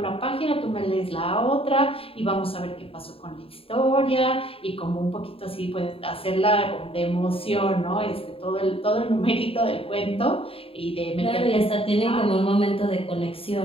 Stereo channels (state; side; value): late; right; 0.27 ms